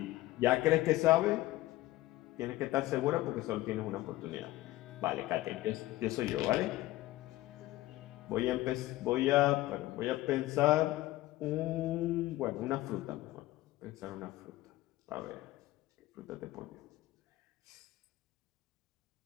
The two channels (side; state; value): right; quieter; 17.3 dB